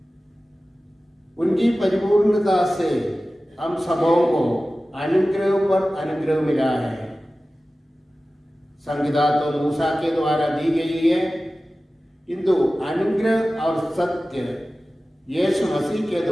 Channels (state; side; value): normal; both; correlation 0.96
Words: उनकी परिपूर्णता से हम सबों को अनुग्रह पर अनुग्रह मिला है। संविदा तो मूसा के द्वारा दी गई है, किंतु अनुग्रह और सत्य यीशु मसीह के